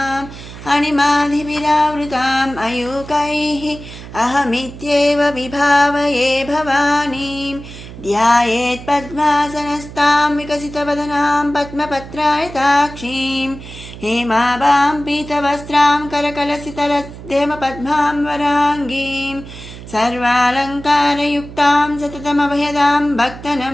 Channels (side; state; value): right; noise; hum, 14 dB below the sound